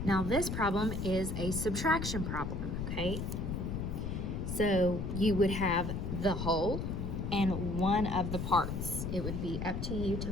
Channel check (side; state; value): left; noise; rumble, 3 dB below the sound